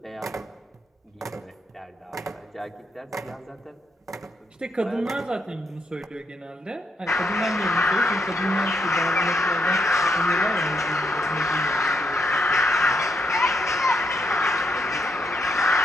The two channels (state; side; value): normal; both; correlation 0.78